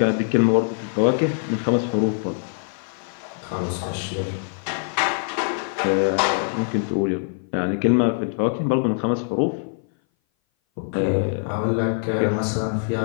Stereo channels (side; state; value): right; silent; 58 dB below the other